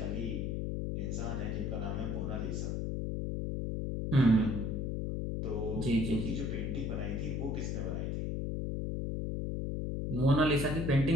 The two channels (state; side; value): noise; left; hum, 1 dB below the sound